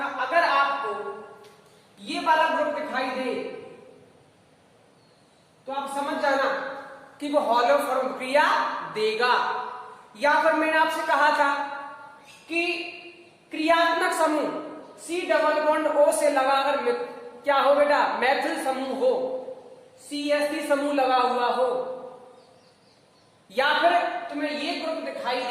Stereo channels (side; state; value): both; identical; correlation 1.00